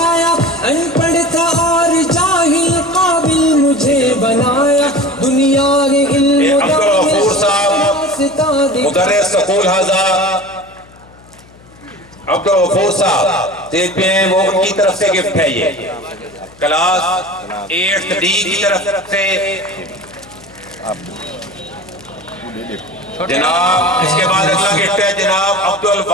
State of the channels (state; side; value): noise; left; hum, 25 dB below the sound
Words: ان پڑھ تھا اور جاہل قابل مجھے بنایا، دنیا کے علم عبدالغفور صاحب مدرس سکول حاضہ، عبدالغفور صاحب سٹیج پہ ہیں، وہ ان کی طرف سے گفٹ ہے، یہ کلاس 8 ڈی کی طرف سے جناب۔ اس کے بعد اگلا گفٹ ہے جناب